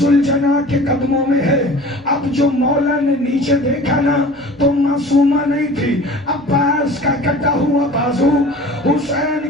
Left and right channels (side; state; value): right; noise; rumble, 30 dB below the sound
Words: کے قدموں میں ہے. اب جو مولا نے نیچے دیکھا نا تو معصومہ نہیں تھی. عباس کا کٹا ہوا بازو